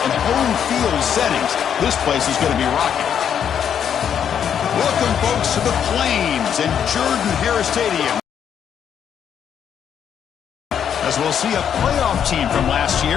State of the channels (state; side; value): quieter; right; 8.5 dB